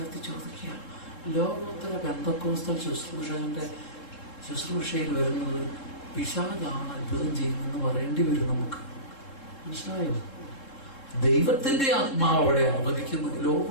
ചോദിക്കുക, ലോകോത്തര പെന്തക്കോസ്തൽ ശുശ്രൂഷയിൽ വരുന്നത് പിശാചാണ് അത്ഭുതം ചെയ്യുന്നതെന്ന് പറയേണ്ടി വരും നമുക്ക്. മനസ്സിലായോ? ദൈവത്തിന്റെ ആത്മാവ് അവിടെ അനുവദിക്കുന്നു.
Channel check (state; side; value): late; right; 3.7 ms